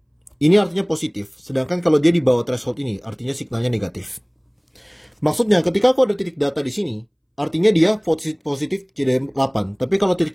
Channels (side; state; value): both; identical; correlation 1.00